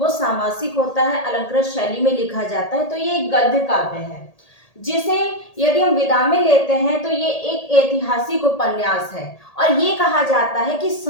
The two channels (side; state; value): right; late; 1.8 ms